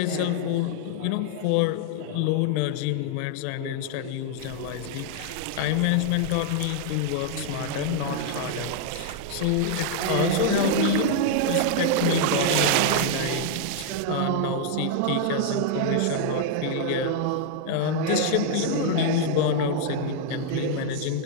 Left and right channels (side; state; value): both; different; correlation 0.00